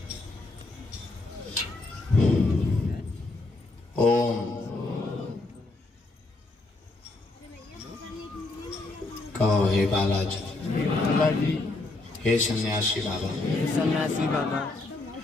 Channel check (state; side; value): quieter; right; 3.1 dB